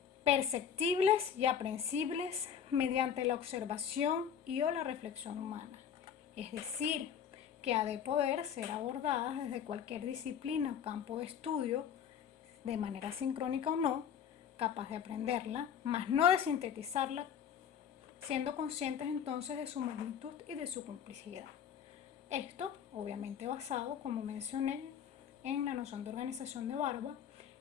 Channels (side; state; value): right; quieter; 8.3 dB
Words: perceptibles y aprehensibles mediante la observación y o la reflexión humana. Es decir, que ha de poder ser abordadas desde cualquier disciplina o campo de estudio, de manera sincrónica o no, capaz de aprenderla, mas no de sintetizarla, siendo conscientes entonces de su magnitud y de su complejidad. Esto, obviamente basado, como mencioné, en la noción de organización de Barba